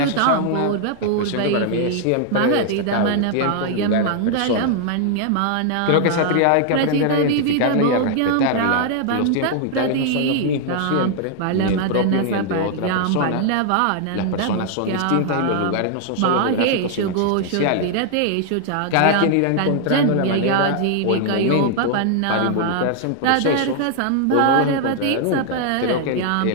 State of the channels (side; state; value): both; different; correlation 0.00